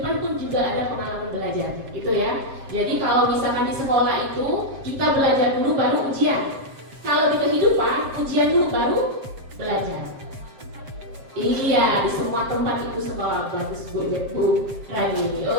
pun juga ada pengalaman belajar, gitu ya. Jadi kalau misalkan di sekolah itu kita belajar dulu baru ujian. Kalau di kehidupan ujian dulu baru belajar. Iya, di semua tempat itu sekolah. Bagus Bu Rani.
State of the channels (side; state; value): left; late; 7.7 ms